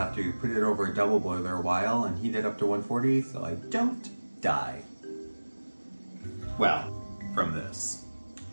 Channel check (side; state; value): both; inverted; correlation -1.00